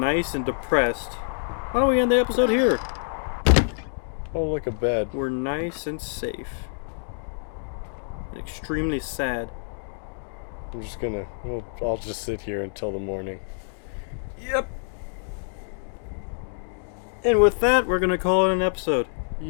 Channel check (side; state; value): right; silent; digital silence